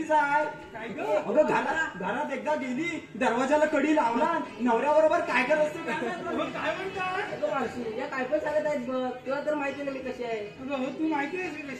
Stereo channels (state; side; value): identical; both; correlation 1.00